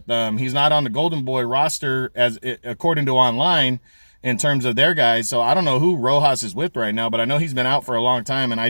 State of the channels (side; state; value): both; inverted; correlation -1.00